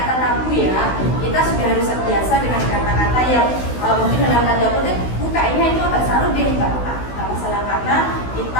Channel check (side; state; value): right; late; 16 ms